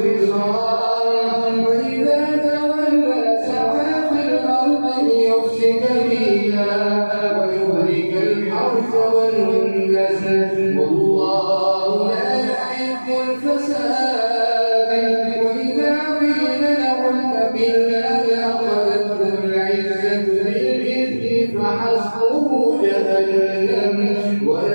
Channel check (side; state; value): both; inverted; correlation -1.00